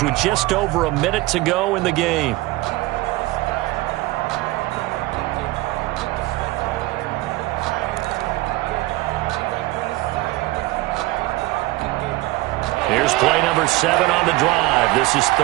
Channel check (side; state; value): left; quieter; 19.7 dB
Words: with just over a minute to go in the game. Here's play number 7 on the drive. This is